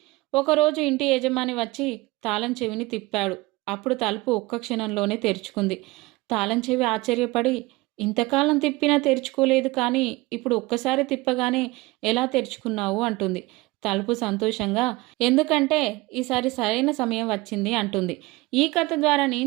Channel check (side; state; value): left; quieter; 21.6 dB